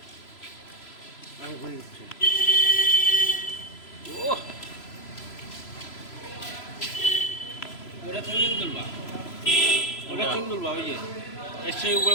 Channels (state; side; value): late; right; 3.0 ms